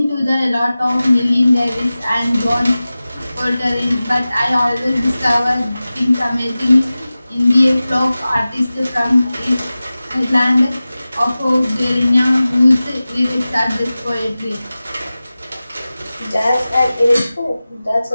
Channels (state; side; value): inverted; both; correlation -0.97